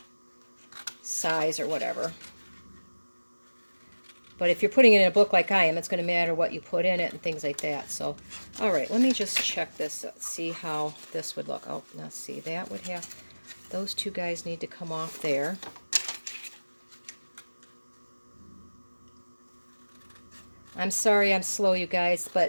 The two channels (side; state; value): both; inverted; correlation -1.00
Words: size or whatever. But if you're putting it in a book like I am, it's going to matter what you put in it and things like that. So, all right, let me just check this, see how this would look. Oh, now see, that would have, those two guys need to come off there. I'm sorry I'm slow, you guys,